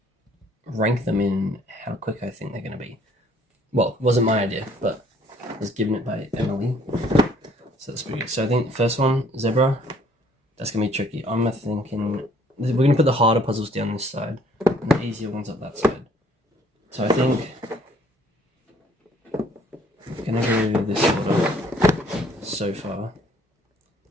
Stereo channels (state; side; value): normal; both; correlation 0.60